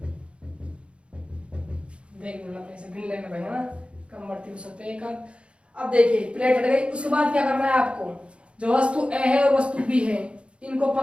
देख लो अपने से गिन लेना भाई, है ना, कम बढ़ती हो सकते हैं एक आध। अब देखिए प्लेट हट गई, उसके बाद क्या करना है आपको, जो वस्तु ए है और वस्तु बी है, इनको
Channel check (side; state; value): left; late; 0.058 ms